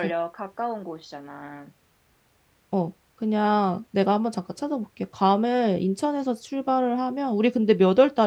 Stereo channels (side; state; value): both; identical; correlation 1.00